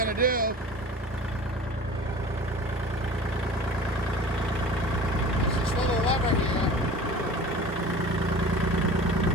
to do, is this little lever here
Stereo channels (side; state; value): both; normal; correlation 0.40